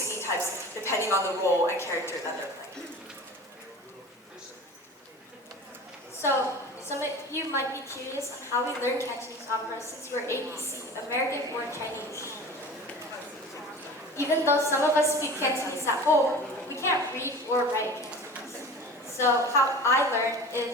types depending on the role and character that they're playing. So, some of you might be curious on how we learn Cantonese opera since we're ABC, American-born Chinese. Even though some of us speak Cantonese at home, we can't read or write Cantonese. So how I learned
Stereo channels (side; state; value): both; normal; correlation 0.37